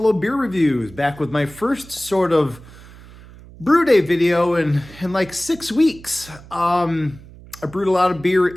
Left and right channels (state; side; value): noise; right; hum, 20 dB below the sound